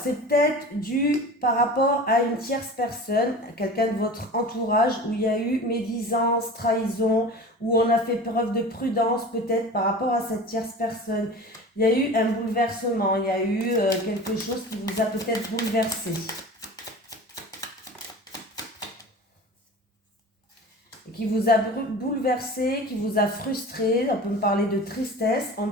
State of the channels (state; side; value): normal; both; correlation 0.36